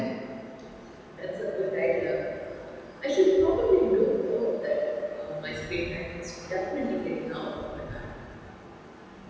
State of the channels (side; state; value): both; identical; correlation 1.00